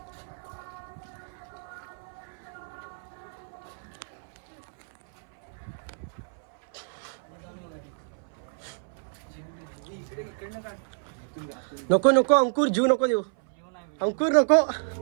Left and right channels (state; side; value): silent; left; 58 dB below the other